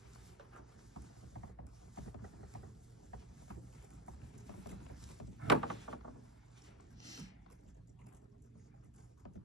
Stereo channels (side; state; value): both; normal; correlation 0.06